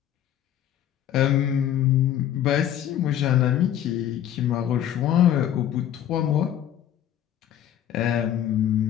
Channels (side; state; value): right; quieter; 10.9 dB